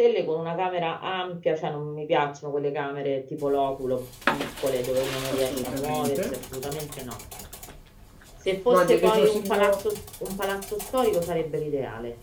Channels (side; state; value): both; identical; correlation 1.00